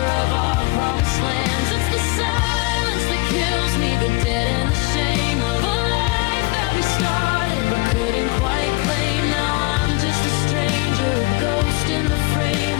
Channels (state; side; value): quieter; right; 25.1 dB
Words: of our promised lands. It's the silence that kills me, the dead and the shame of a life that we started but couldn't quite claim. Now I'm just a stranger, a ghost in the frame